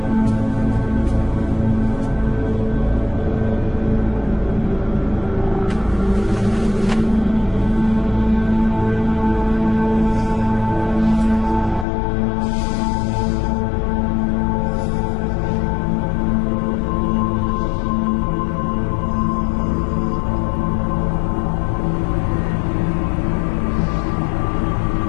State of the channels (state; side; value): drops out; right; at 11.9 s